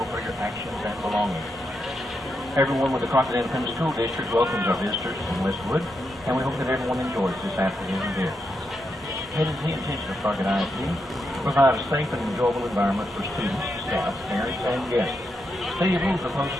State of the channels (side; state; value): both; normal; correlation 0.83